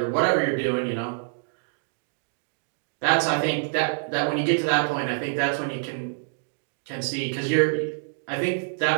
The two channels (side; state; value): left; silent; digital silence